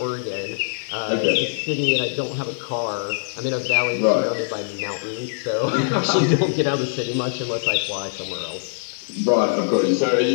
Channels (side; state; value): right; silent; digital silence